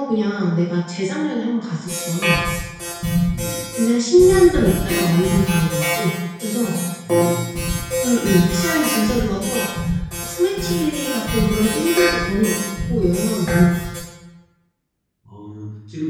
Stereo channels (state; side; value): identical; both; correlation 1.00